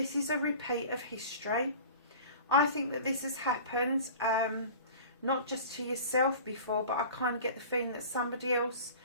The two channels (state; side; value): inverted; both; correlation -0.40